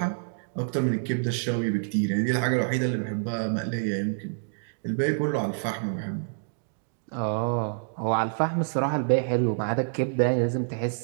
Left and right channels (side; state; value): left; silent; digital silence